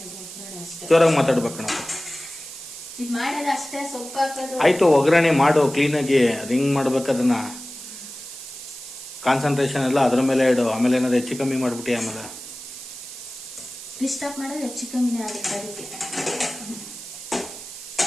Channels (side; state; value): right; noise; hiss, 12 dB below the sound